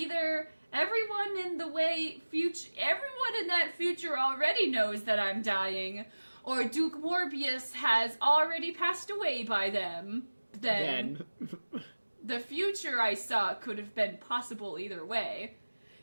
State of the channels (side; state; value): both; inverted; correlation -1.00